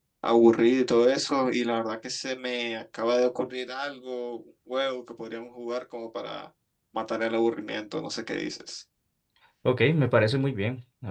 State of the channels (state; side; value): identical; both; correlation 1.00